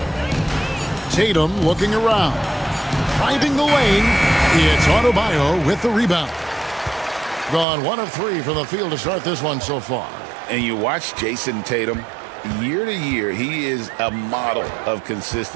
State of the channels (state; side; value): drops out; left; at 7.7 s